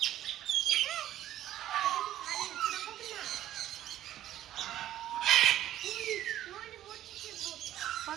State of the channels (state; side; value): quieter; left; 12.8 dB